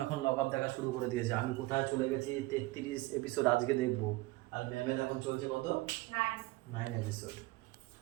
এখন লকআপ দেখা শুরু করে দিয়েছে আমি কোথায় চলে গেছি 33 এপিসোড আজকে দেখবো আর ম্যামের এখন চলছে কত 9 এপিসোড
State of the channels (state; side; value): quieter; left; 20.6 dB